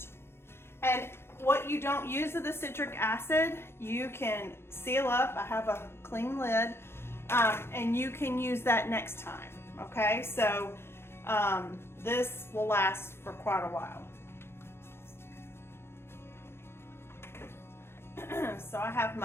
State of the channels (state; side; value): late; right; 0.12 ms